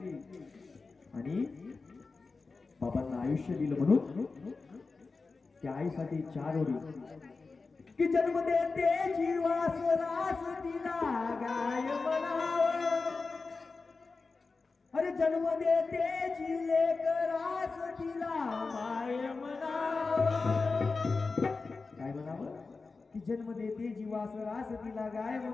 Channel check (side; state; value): right; quieter; 4.1 dB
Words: आणि बाबांना आयुष्य दिलं. म्हणून त्या आईसाठी 4 ओळी की जन्म देते जीवास रास तिला गाय म्हणावं. अरे जन्म देते जी लेकरास तिला माय म्हणावं. काय म्हणावं? की जन्म देते जीवास रास तिला गाय